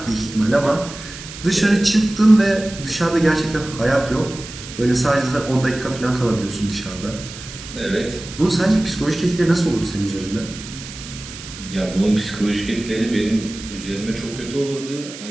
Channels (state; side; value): noise; right; hiss, 13 dB below the sound